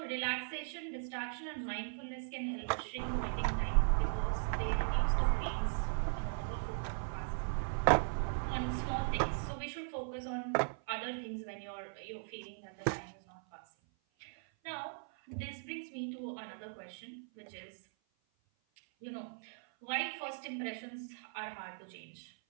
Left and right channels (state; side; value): silent; left; 52 dB below the other